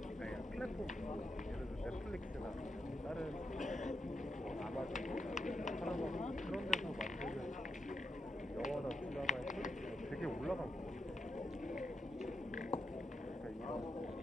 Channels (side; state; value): both; normal; correlation 0.84